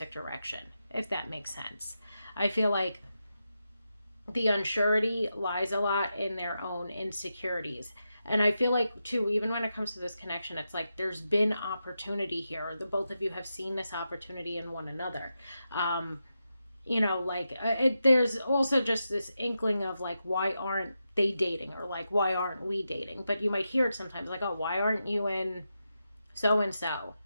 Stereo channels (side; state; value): both; inverted; correlation -0.88